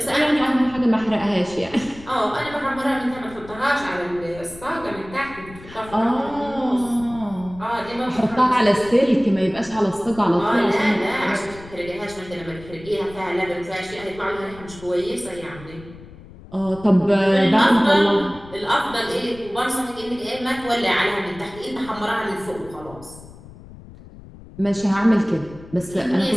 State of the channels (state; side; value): noise; left; rumble, 18 dB below the sound